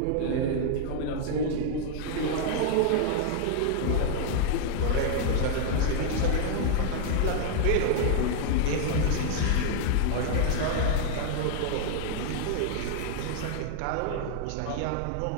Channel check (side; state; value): both; different; correlation -0.01